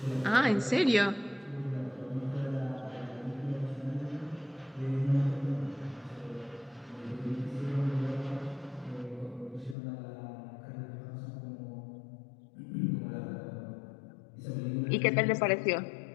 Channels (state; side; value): drops out; right; at 9.8 s